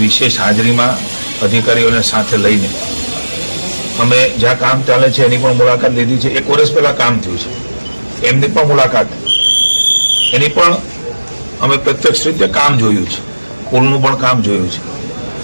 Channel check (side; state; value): both; inverted; correlation -1.00